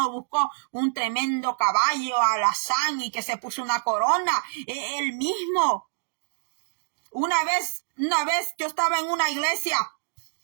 buscó un tremendo caballo alazán y que se puso una corona, él mismo. Una vez yo estaba en una iglesia,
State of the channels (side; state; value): left; silent; digital silence